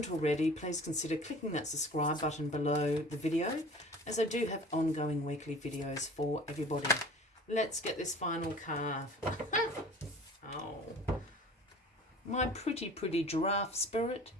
already, please consider clicking that subscribe button below the video, as I do have ongoing weekly videos for everybody. Let's get this final card. Oh, my pretty giraffe spirit.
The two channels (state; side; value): normal; both; correlation 0.44